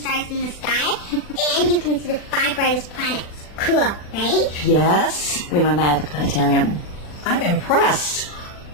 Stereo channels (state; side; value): late; right; 40 ms